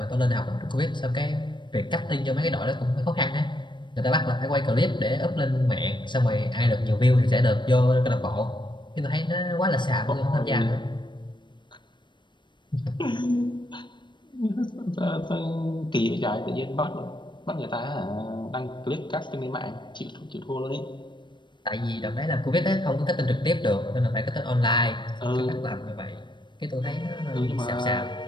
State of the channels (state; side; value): late; right; 0.22 ms